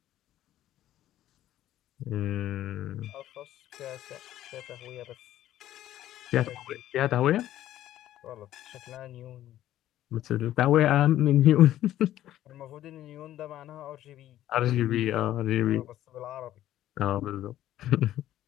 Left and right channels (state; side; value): quieter; right; 13.1 dB